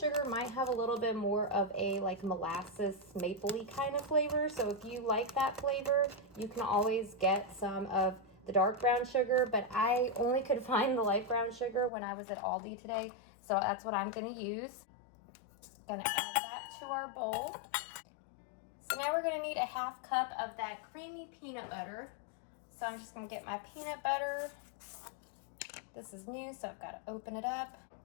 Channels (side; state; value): right; drops out; at 11.9 s